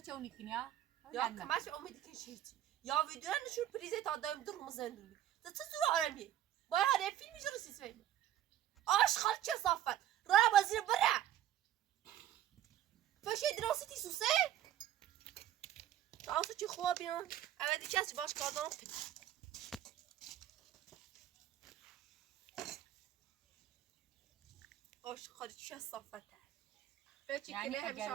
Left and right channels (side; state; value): left; quieter; 11.9 dB